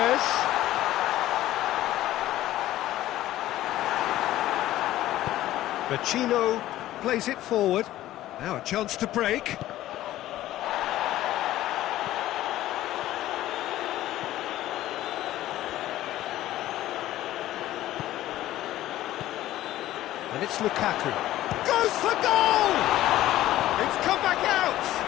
Vecino plays it forward. Now a chance to break. And it's Lukaku. Goes for goal! It's come back out!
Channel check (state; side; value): quieter; right; 14.5 dB